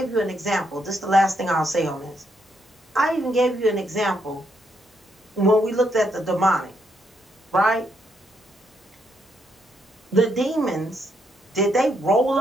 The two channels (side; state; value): both; normal; correlation 0.76